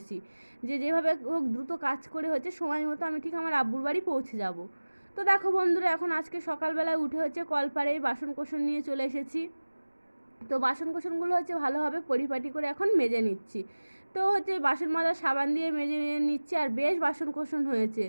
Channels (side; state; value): both; inverted; correlation -1.00